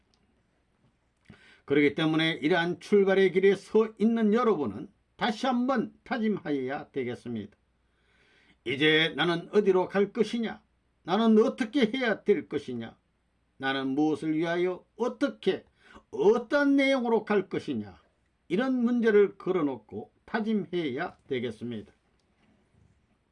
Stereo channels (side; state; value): both; identical; correlation 1.00